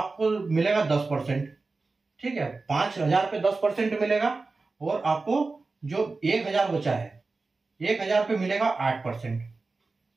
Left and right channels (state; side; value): quieter; left; 3.8 dB